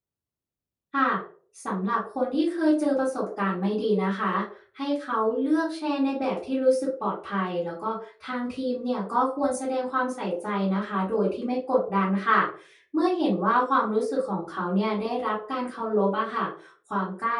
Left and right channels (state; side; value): identical; both; correlation 1.00